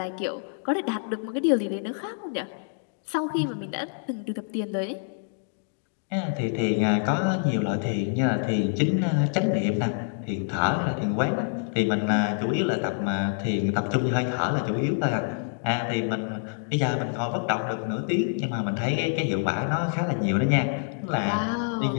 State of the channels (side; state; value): right; silent; digital silence